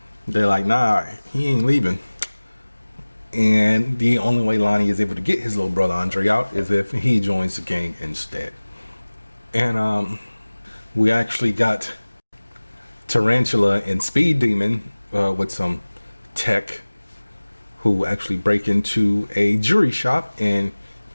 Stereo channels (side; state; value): both; inverted; correlation -1.00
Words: They're like, nah, he ain't leaving. And the only way Lonnie is able to get his little brother Andre out is if he joins the gang instead. And we actually got Tarantula and Speed Demon with some tech who actually break into a jewelry shop, and